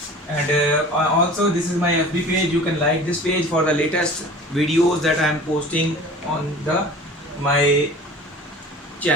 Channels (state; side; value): normal; both; correlation 0.42